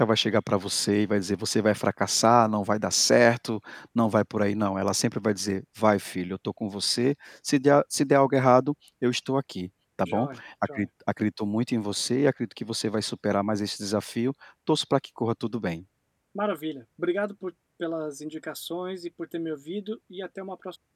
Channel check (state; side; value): identical; both; correlation 1.00